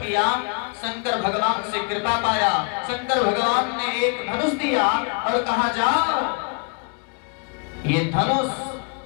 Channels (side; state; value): right; quieter; 36.3 dB